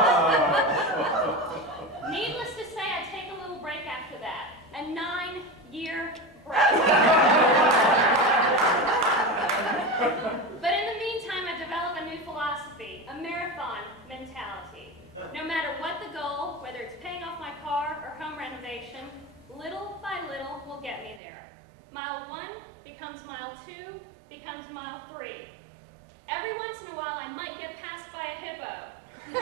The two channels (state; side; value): drops out; left; at 21.2 s